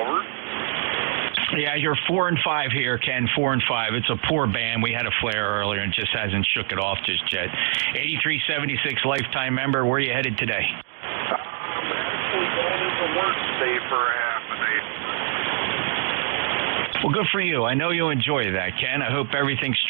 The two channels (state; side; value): silent; left; digital silence